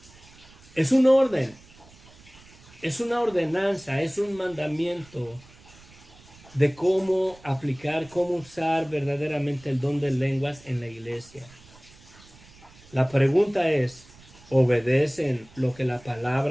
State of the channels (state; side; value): noise; right; rumble, 24 dB below the sound